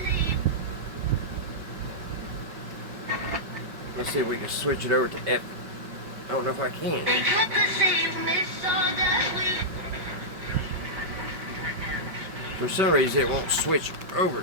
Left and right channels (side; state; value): left; late; 5.6 ms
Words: Let's see if we can switch it over to F. I don't know if I can. For some reason it won't switch over.